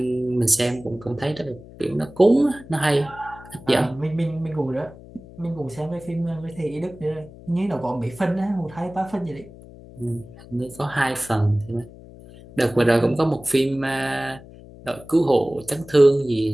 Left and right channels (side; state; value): left; noise; hum, 19 dB below the sound